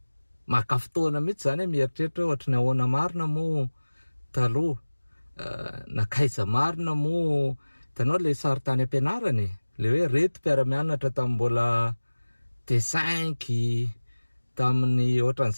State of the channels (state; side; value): inverted; both; correlation -1.00